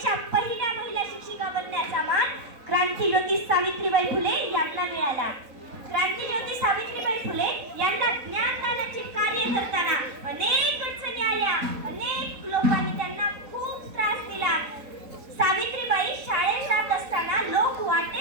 पहिल्या महिला शिक्षिका बनण्याचा मान क्रांतिज्योती सावित्रीबाई फुले यांना मिळाला. क्रांतिज्योती सावित्रीबाई फुले यांना ज्ञानदानाचे कार्य करताना अनेक अडचणी आल्या. अनेक लोकांनी त्यांना खूप त्रास दिला. सावित्रीबाई शाळेत जात असताना लोक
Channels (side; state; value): left; late; 3.9 ms